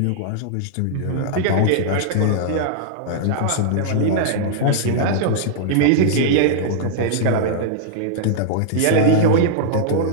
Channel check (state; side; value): different; both; correlation -0.01